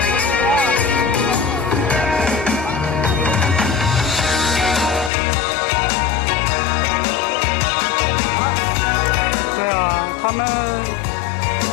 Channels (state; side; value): drops out; right; at 5.1 s